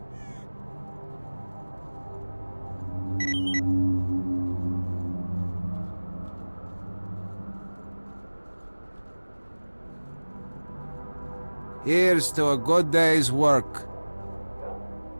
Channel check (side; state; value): both; inverted; correlation -1.00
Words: Here's to a good day's work.